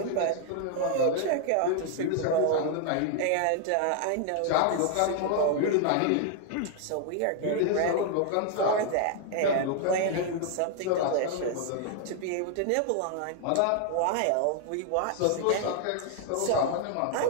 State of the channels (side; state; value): both; different; correlation 0.00